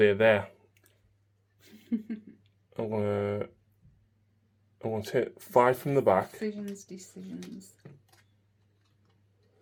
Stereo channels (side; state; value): both; identical; correlation 1.00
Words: there. I'm going to take 5 from the back. decisions.